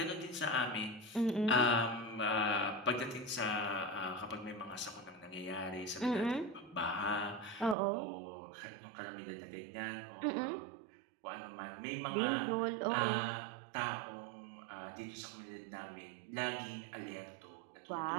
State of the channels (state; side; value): drops out; left; at 7.8 s